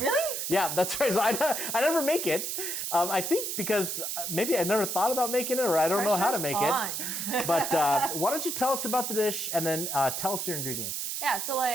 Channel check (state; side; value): noise; right; hiss, 3 dB below the sound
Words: Yeah, that's right. So I never make it. I think because maybe I never thought about making it, or I don't know how to make it. But why don't you tell us about the dish and then tell us your ingredients? Yeah, so